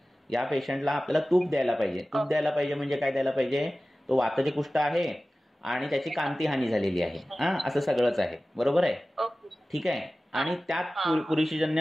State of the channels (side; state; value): both; normal; correlation 0.96